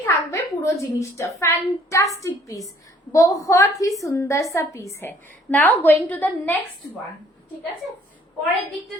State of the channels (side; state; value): both; normal; correlation 0.60